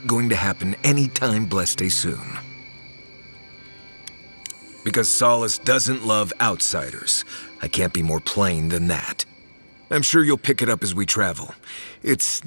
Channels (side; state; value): both; inverted; correlation -1.00